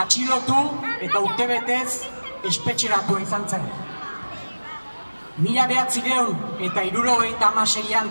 eta urtebetez espetxeratua izan zen. 1976an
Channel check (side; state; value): both; inverted; correlation -1.00